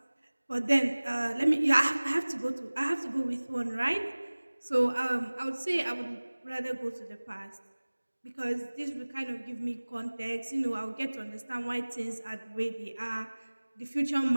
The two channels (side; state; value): both; inverted; correlation -1.00